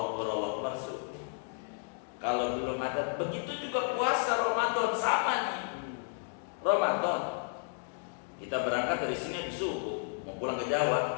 Akbar subuh. Kalau belum ada, begitu juga puasa Ramadan sama nih. Ramadan, kita berangkat dari sini habis subuh, mau pulang ke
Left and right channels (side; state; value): right; silent; 55 dB below the other